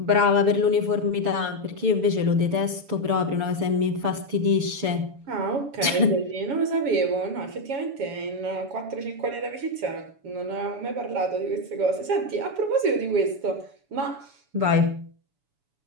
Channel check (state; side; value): late; left; 7.0 ms